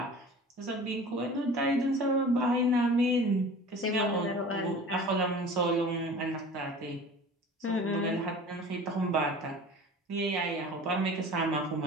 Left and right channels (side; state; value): both; normal; correlation 0.41